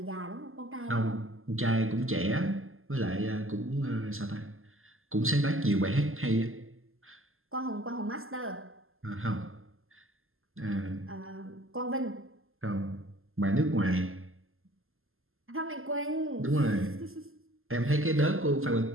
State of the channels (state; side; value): late; left; 0.61 ms